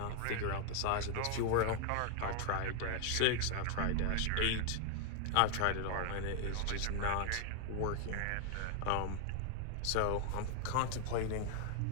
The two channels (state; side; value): different; both; correlation 0.00